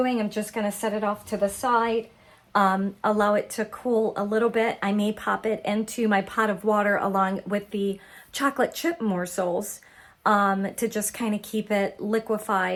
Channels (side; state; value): both; identical; correlation 1.00